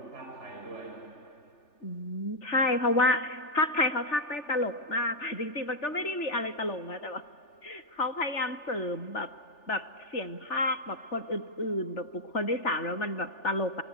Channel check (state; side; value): late; right; 3.4 ms